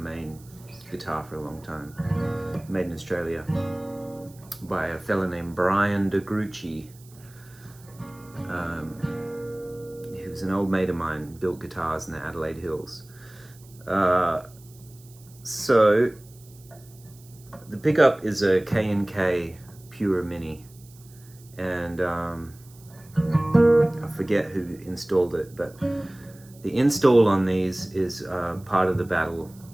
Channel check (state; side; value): noise; right; hiss, 25 dB below the sound